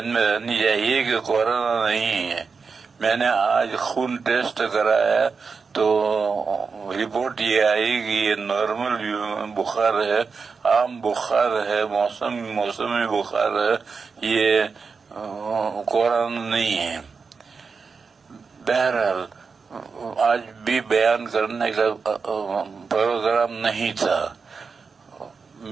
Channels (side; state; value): left; quieter; 5.1 dB